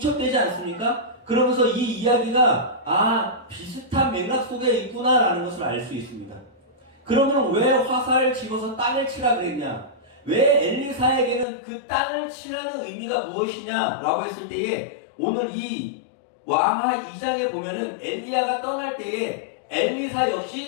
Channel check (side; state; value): right; drops out; at 11.5 s